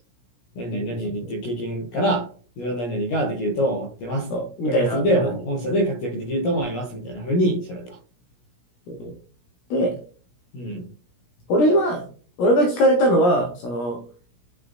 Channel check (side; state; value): right; late; 17 ms